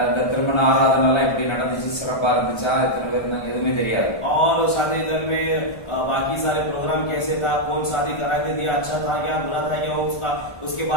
இந்த திருமண ஆராதனை எல்லாம் எப்படி நடந்துச்சு, சிறப்பா இருந்துச்சா, எத்தனை பேர் இருந்தாங்க, எதுவுமே தெரியாது. और शादी घर में बाकी सारे प्रोग्राम कैसे था, कौन शादी करा के दिया, अच्छा था क्या बुरा था क्या, उसका उसके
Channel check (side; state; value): right; late; 1.4 ms